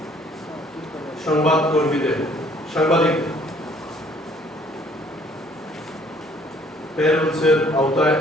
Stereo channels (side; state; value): both; normal; correlation 0.60